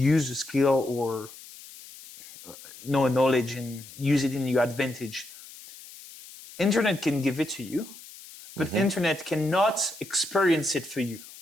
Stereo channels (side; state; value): left; noise; hiss, 18 dB below the sound